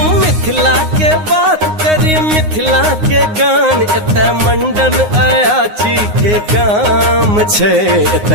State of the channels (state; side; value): late; left; 9.6 ms